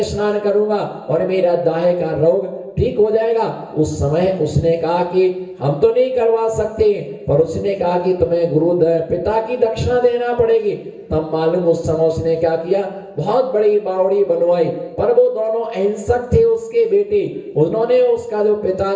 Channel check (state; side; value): identical; both; correlation 1.00